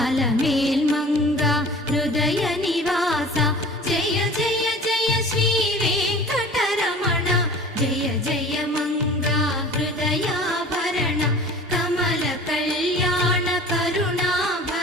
అలమేల్మంగ హృదయ నివాస జయ జయ జయ శ్రీ వెంకటరమణ జయ జయ మంగ హృదయాభరణ కమల కళ్యాణ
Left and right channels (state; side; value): normal; both; correlation 0.43